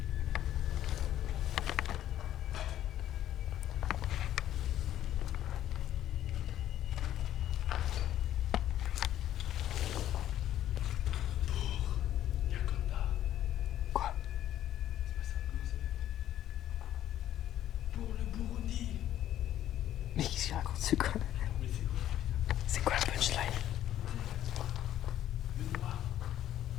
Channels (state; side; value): quieter; right; 12.0 dB